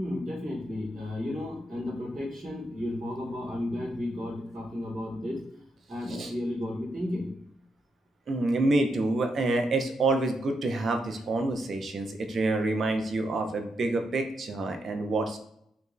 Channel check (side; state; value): both; normal; correlation 0.82